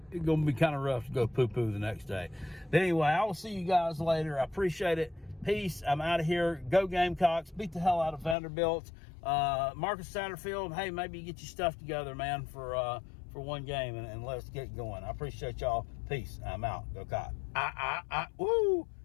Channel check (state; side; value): drops out; right; at 8.3 s